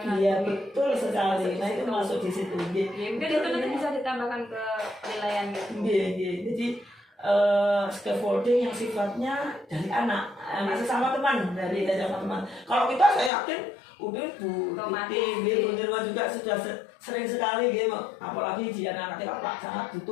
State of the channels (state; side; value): drops out; right; at 13.3 s